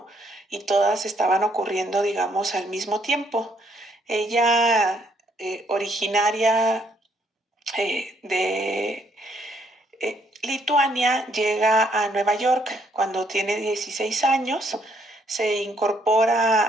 Y todas estaban ocurriendo, digamos, al mismo tiempo. Ella, originaria de Lituania, llega a Nueva York cuando tiene 16 años, se incorpora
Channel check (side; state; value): both; normal; correlation 0.70